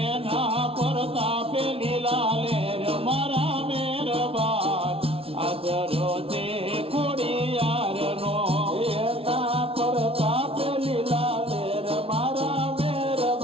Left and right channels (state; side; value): late; left; 0.27 ms